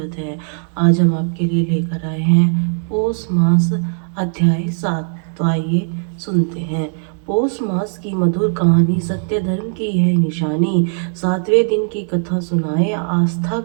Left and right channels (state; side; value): silent; left; 67 dB below the other